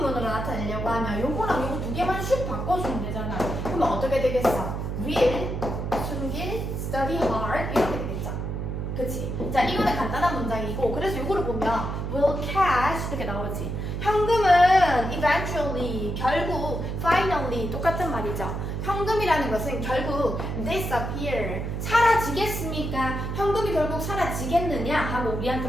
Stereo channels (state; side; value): noise; right; hum, 3 dB below the sound